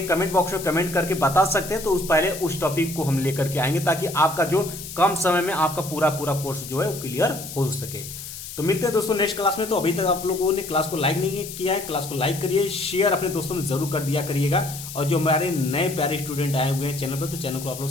कमेंट बॉक्स में कमेंट करके बता सकते हैं। तो पहले उस टॉपिक को हम लेकर के आएंगे, ताकि आपका जो कम समय में आपका पूरा कोर्स जो है वो क्लियर हो सके। तो मिलते हैं दोस्तों नेक्स्ट क्लास में। तो अभी तक आप लोगों ने क्लास को लाइक नहीं किया है, क्लास को लाइक करिए, शेयर अपने दोस्तों में जरूर कर दिया करिएगा। और जो हमारे नए प्यारे स्टूडेंट आए हुए हैं चैनल पर, तो चैनल को आप लोग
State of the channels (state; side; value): noise; left; hiss, 11 dB below the sound